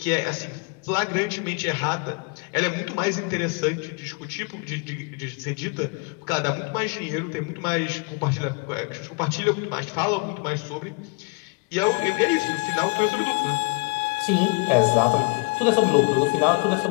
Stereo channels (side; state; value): right; quieter; 31.8 dB